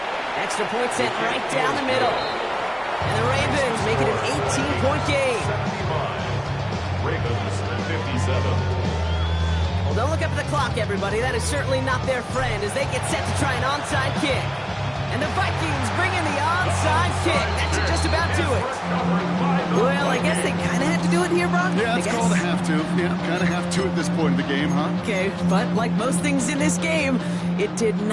Extra point sent right down the middle. And the Ravens make it an 18-point game. 75. Ravens 57. Well, don't look up at the clock, everybody. That is certainly not their friend as they get set to try an onside kick. And the Vikings bring in the onside kick. That should just about do it. Well, I guess they kind of had to do it here, Brock. Yeah, it's called a have to. Yeah, kind of have to at this point in the game, huh? Okay, but like most things in this game, it did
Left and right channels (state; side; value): identical; both; correlation 1.00